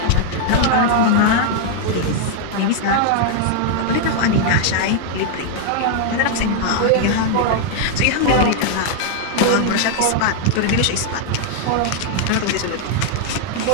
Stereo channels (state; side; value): different; both; correlation 0.00